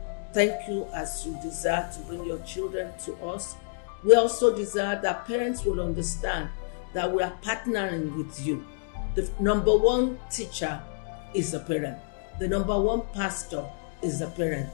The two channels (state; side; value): silent; right; digital silence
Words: Thank you as you desire to bring your children to us. We also desire that parents will understand that we are partnering with you. The number one teacher is a parent. The number one pastor is a parent.